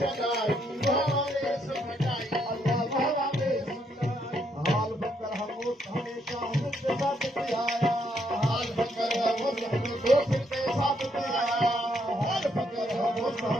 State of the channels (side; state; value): both; normal; correlation 0.74